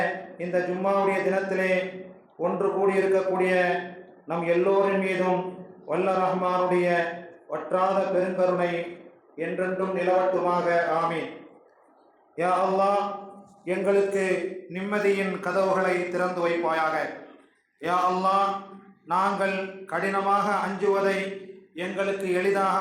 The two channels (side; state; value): both; identical; correlation 1.00